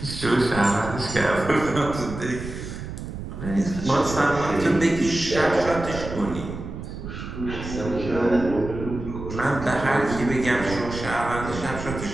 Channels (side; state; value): right; noise; rumble, 9 dB below the sound